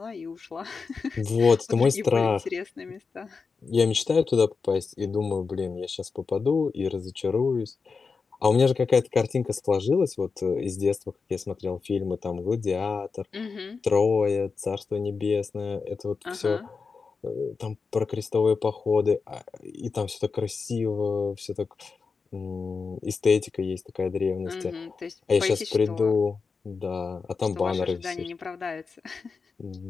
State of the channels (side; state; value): right; quieter; 4.9 dB